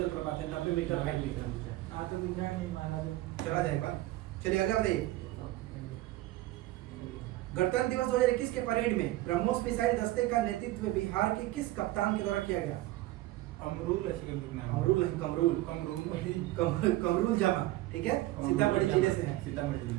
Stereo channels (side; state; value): left; quieter; 17.1 dB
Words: है, 90 मीटर हाइट में। चला जाए एक बार। चलिए आगे बताइए। गणतंत्र दिवस 2021 के परेड में ब्रह्मोस मिसाइल दस्ते का नेतृत्व बिहार के किस कप्तान के द्वारा किया गया? अमरूल ऐसे करके नाम। अमरूल नहीं, कमरूल। कमरूल जामा, ठीक है, सीतामढ़ी जिले से है। सीतामढ़ी